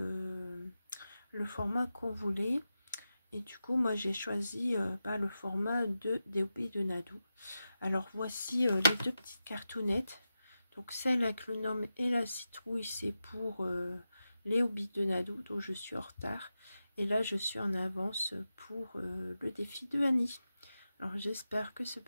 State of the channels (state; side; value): inverted; both; correlation -0.91